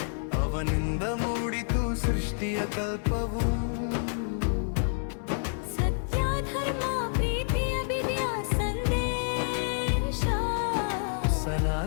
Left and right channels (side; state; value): right; silent; 59 dB below the other